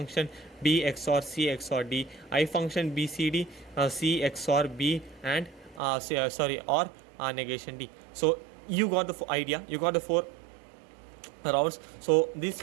B XOR C XOR D. I function BCD, C XOR B and or negation D. So you got the idea, you got the 4 routes. So these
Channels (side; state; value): left; drops out; at 5.8 s